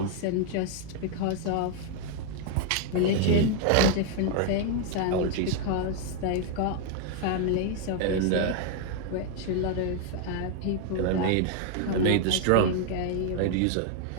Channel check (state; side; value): different; both; correlation 0.00